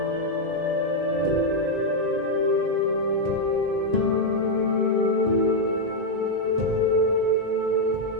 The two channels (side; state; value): left; late; 2.1 ms